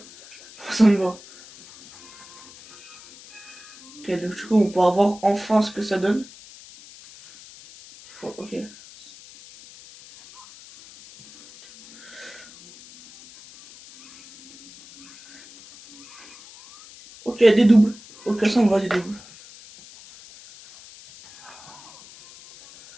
Ça me va. Ok, donc du coup, on peut avoir enfin ce que ça donne. Ok. Ok, des doubles. Ok, ça on va des doubles.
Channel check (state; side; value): noise; left; hiss, 21 dB below the sound